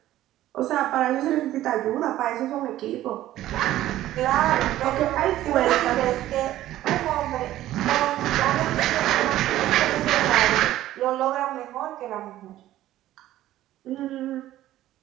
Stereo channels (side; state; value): left; quieter; 14.1 dB